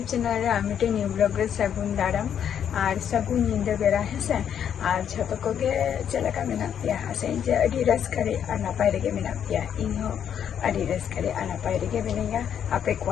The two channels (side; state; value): right; quieter; 8.8 dB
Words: चैनल रे मिट्टे न्यू ब्लॉग रे सगुन दाराम और सगुन नींद बेरा हेसे और जो को चलका मेना पिया हसे जे अडी रस्करे और नपाय रेगे मेना पिया इहो अडी रस्करे और नपाय रेगे मेनेगा आपे